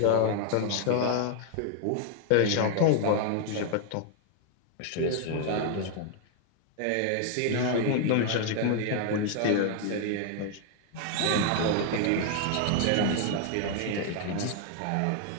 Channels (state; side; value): different; both; correlation 0.00